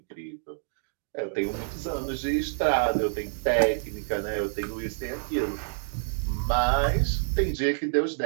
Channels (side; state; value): left; silent; digital silence